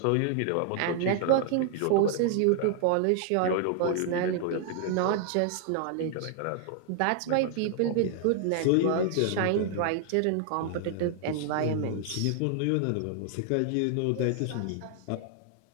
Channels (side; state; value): both; different; correlation 0.00